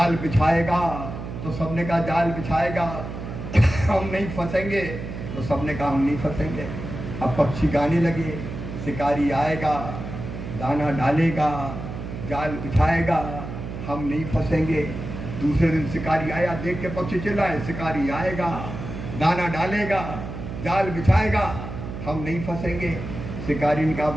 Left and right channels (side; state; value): right; noise; hum, 8 dB below the sound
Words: बिछाएगा। तो सबने कहा जाल बिछाएगा। हम नहीं फंसेंगे। तो सबने कहा हम नहीं फंसेंगे। अब पक्षी गाने लगे, शिकारी आएगा, दाना डालेगा, जाल बिछाएगा, हम नहीं फंसेंगे। दूसरे दिन शिकारी आया, देख के पक्षी चिल्लाए शिकारी आएगा, दाना डालेगा, जाल बिछाएगा, हम नहीं फंसेंगे। शिकारी ने कहा